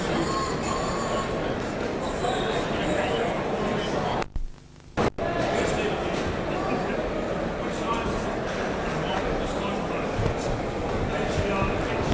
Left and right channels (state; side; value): identical; both; correlation 1.00